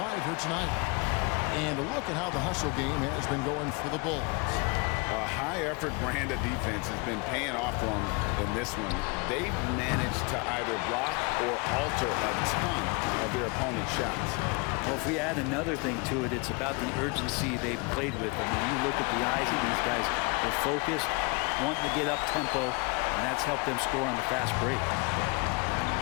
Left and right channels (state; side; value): quieter; right; 29.6 dB